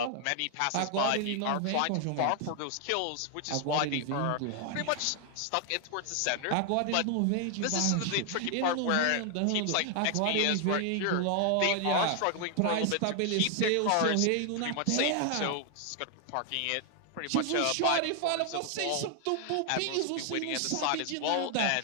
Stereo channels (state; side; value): different; both; correlation 0.00